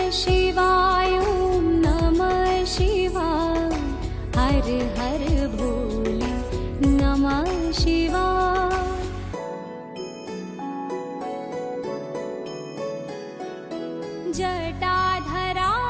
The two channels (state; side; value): identical; both; correlation 1.00